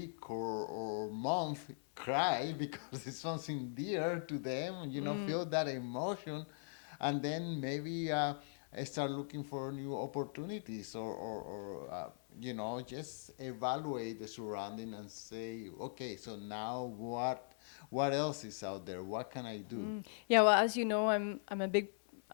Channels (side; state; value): right; silent; 51 dB below the other